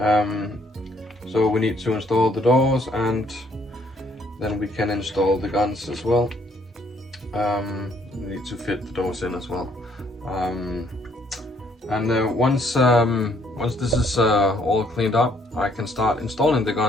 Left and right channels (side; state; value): both; normal; correlation 0.66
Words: we need to install the doors, and then we can install the guns as well. We need to fit the doors in as well. Once this is all cleaned up, I can start installing the